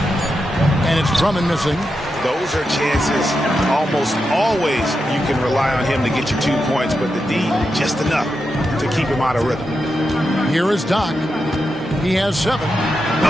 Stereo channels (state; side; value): normal; both; correlation 0.87